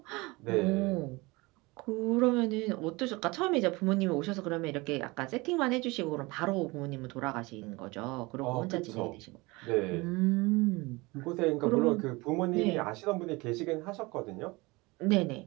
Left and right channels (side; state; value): left; quieter; 23.7 dB